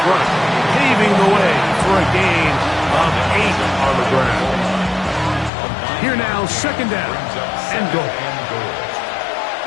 front, paving the way for a gain of 8 on the ground. Here now, second down and goal.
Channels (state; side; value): drops out; right; at 5.5 s